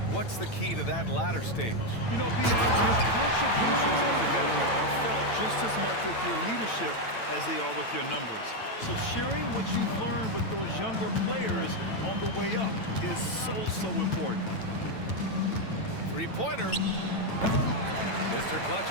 What's the key to that latter stage? You know, your contributions as a veteran are felt just as much with your leadership as they are with your numbers. So sharing what you've learned with those younger players on the way up is so important. 3-pointer. Mr. Clutch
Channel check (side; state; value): right; late; 9.0 ms